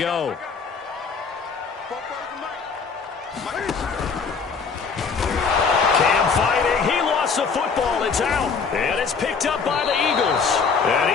Cam fighting. He lost the football. It's out. And it's picked up by the Eagles. And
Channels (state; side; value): quieter; right; 5.4 dB